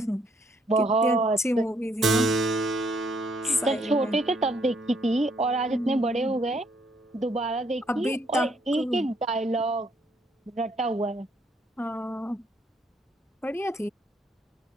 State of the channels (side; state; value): both; normal; correlation 0.69